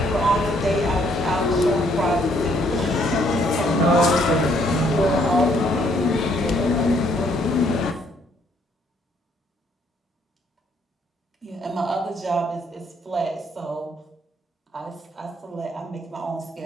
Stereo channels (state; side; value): normal; both; correlation 0.68